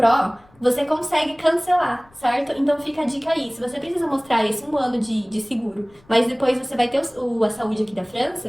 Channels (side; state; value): left; noise; rumble, 29 dB below the sound